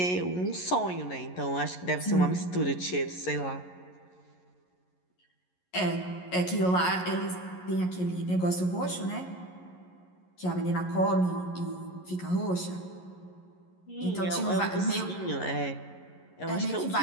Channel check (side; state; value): right; late; 11 ms